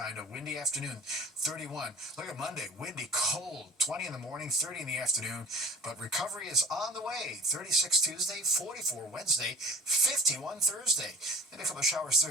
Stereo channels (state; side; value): normal; both; correlation 0.43